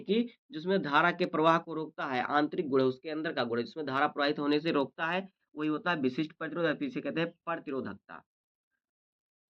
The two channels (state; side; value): identical; both; correlation 1.00